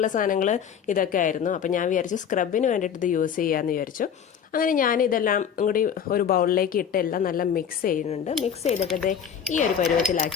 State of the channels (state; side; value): quieter; right; 8.0 dB